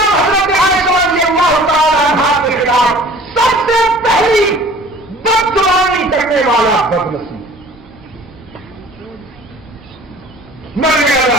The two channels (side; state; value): both; normal; correlation 0.47